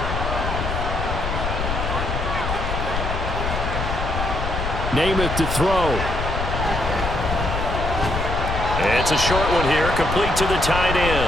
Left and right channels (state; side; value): noise; left; rumble, 3 dB below the sound